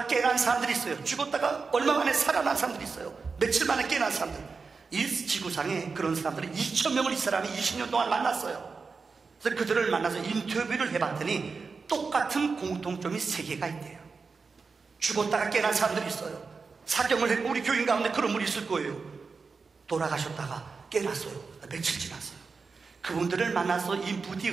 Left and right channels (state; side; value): quieter; left; 4.7 dB